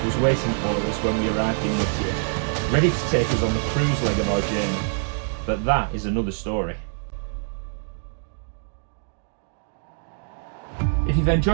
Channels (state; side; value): silent; left; digital silence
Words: was waiting for us when we arrived in Whittier, ready to take us on the cruise leg of our journey. But that is another story. If you've